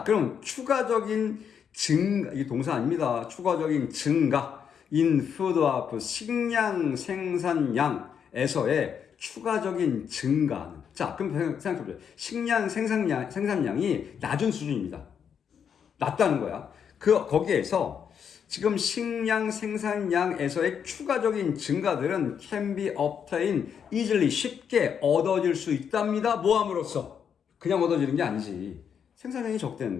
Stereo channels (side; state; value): right; quieter; 7.6 dB